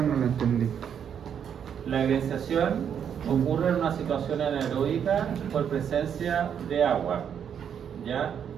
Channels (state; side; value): quieter; left; 8.3 dB